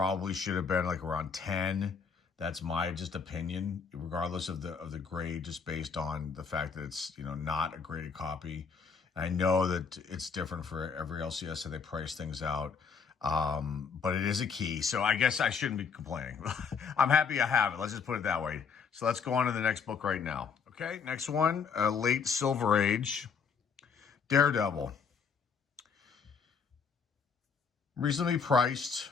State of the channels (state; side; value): quieter; right; 5.9 dB